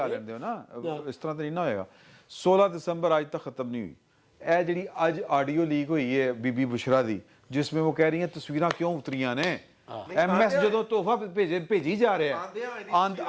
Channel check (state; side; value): identical; both; correlation 1.00